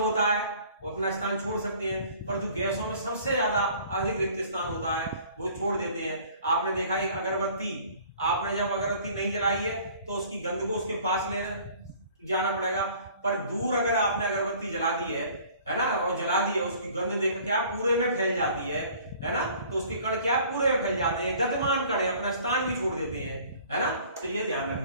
है, वो अपना स्थान छोड़ सकते हैं, परंतु गैसों में सबसे ज्यादा अधिक रिक्त स्थान होता है, वो छोड़ देते हैं। आपने देखा है अगरबत्ती, आपने जब अगरबत्ती नहीं जलाई है तो उसकी गंध को उसके पास लेने जाना पड़ेगा, पर दूर अगर आपने अगरबत्ती जला दी है ना, और जला दी है, उसकी गंध देख क्या पूरे में फैल जाती है ना। तो उसके कण क्या पूरे में फैल जाते हैं, गतिमान कण है, अपना स्थान भी छोड़ देते हैं, है ना। तो ये ध्यान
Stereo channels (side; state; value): both; inverted; correlation -0.51